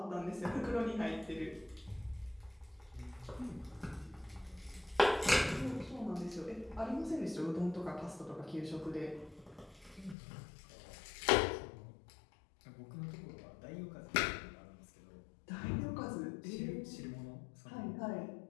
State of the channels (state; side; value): drops out; right; at 10.2 s